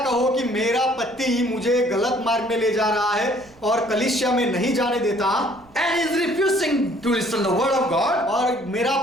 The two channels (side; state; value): right; noise; rumble, 27 dB below the sound